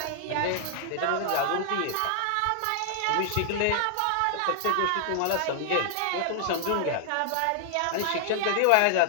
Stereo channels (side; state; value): both; different; correlation -0.01